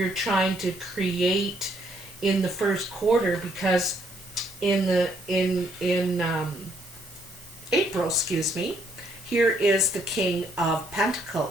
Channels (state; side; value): noise; right; hiss, 21 dB below the sound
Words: trying to create in the first quarter, because in April, excuse me, here is the King of